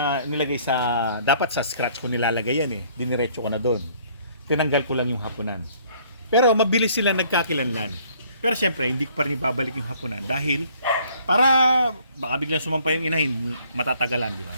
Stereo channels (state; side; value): inverted; both; correlation -0.60